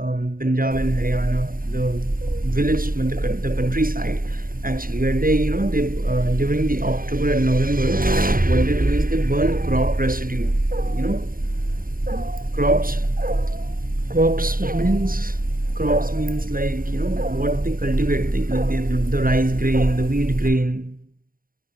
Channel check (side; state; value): left; late; 0.41 ms